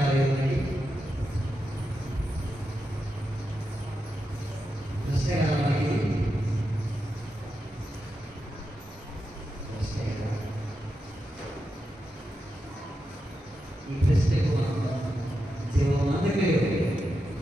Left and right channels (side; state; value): both; normal; correlation 0.88